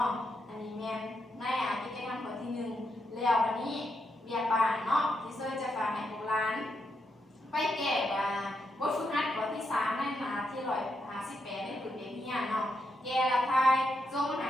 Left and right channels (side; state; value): both; normal; correlation 0.82